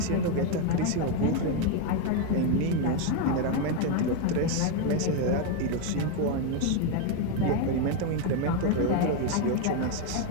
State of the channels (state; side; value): different; both; correlation 0.02